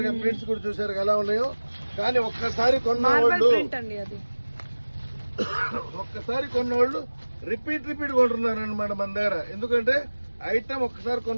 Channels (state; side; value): inverted; both; correlation -1.00